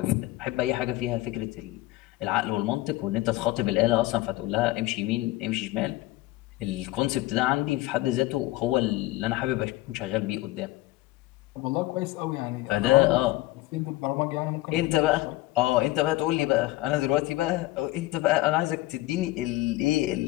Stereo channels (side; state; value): right; quieter; 18.0 dB